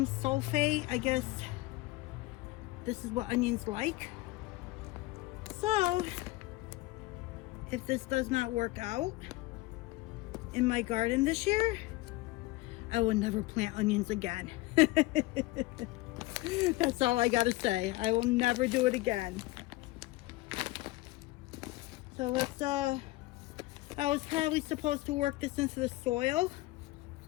sulfate. I guess this is what onions like. So if this does not work out in my garden this year, I will never plant onions again. That's all I gotta say. I will never do it again. So let's, I was probably supposed to work this into the soil,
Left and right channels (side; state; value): right; quieter; 19.8 dB